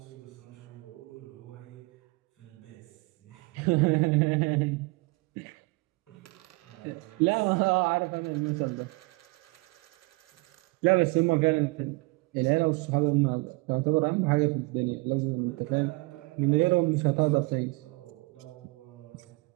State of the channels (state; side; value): quieter; left; 26.3 dB